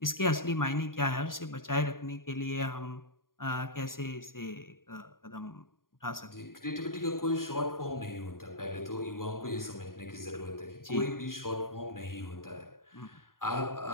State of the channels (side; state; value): right; late; 0.91 ms